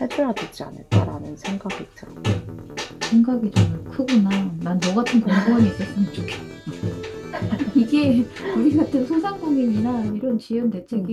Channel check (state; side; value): identical; both; correlation 1.00